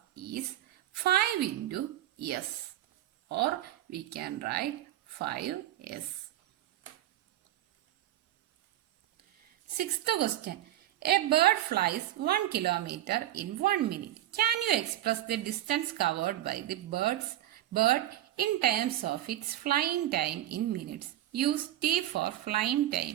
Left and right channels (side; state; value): left; quieter; 13.6 dB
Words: is 5 into S, or we can write 5S. Sixth question. A bird flies 1 kilometer in 1 minute. Can you express the distance covered by the bird in terms of its flying time in minutes? Use T for flying